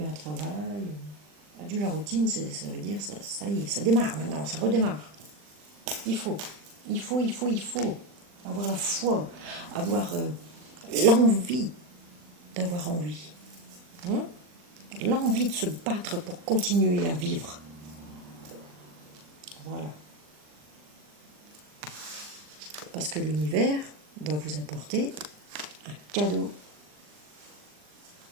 un travail. Adieu la routine, ça veut dire, ça y est, ça démarre maintenant, ça redémarre. Il faut avoir la foi, avoir l'envie d'avoir envie. L'envie de se battre pour continuer à vivre. Voilà. Parce que l'univers va vous apporter un cadeau.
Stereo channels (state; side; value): late; left; 40 ms